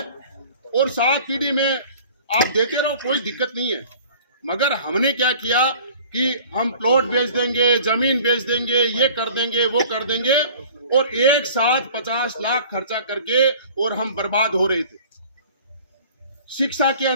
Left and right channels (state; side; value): inverted; both; correlation -0.47